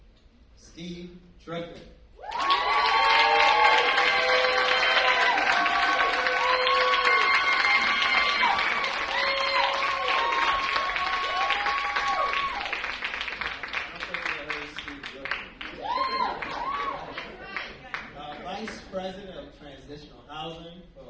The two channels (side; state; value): both; identical; correlation 1.00